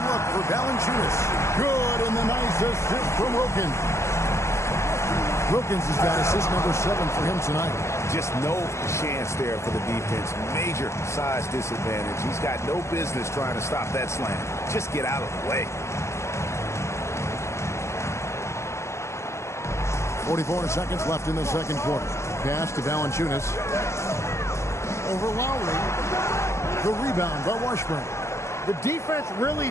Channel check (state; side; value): late; right; 0.14 ms